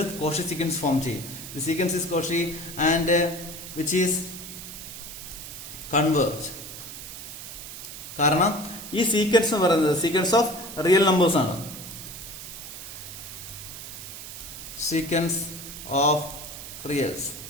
Cauchy sequence form ചെയ്യും. The sequence is Cauchy and which is converge. കാരണം ഈ സീക്വൻസ് എന്ന് പറയുന്നത് സീക്വൻസ് ഓഫ് റിയൽ നമ്പേഴ്സ് ആണ്. സീക്വൻസ് ഓഫ്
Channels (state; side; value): noise; right; hiss, 11 dB below the sound